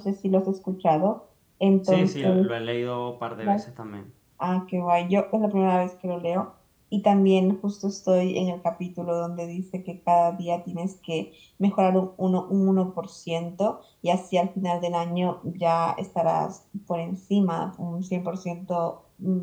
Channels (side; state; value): both; identical; correlation 1.00